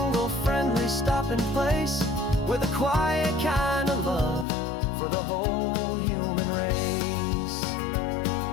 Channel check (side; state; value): right; drops out; at 4.5 s